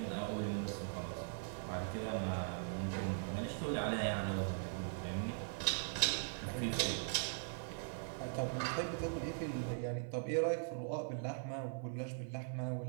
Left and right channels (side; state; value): left; silent; 51 dB below the other